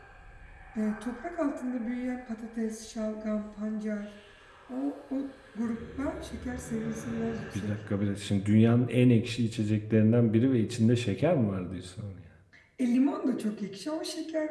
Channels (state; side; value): identical; both; correlation 1.00